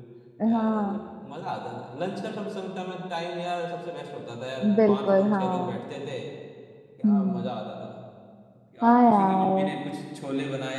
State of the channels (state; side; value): identical; both; correlation 1.00